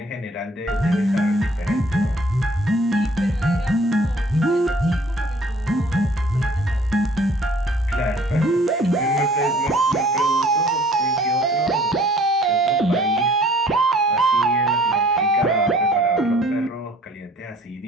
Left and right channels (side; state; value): both; normal; correlation 0.54